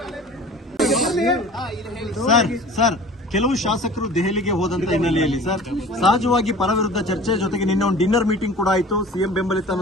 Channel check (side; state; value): both; normal; correlation 0.43